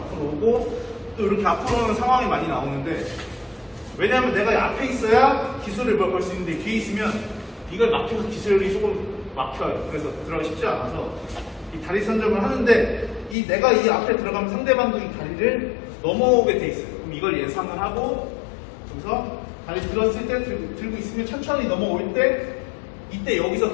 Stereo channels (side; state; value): right; drops out; at 13.4 s